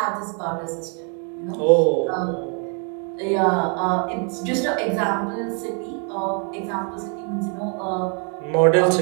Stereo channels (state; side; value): quieter; left; 39.5 dB